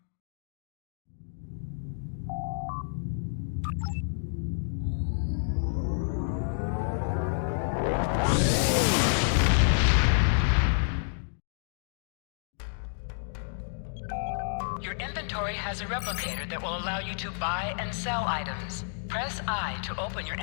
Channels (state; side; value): silent; right; digital silence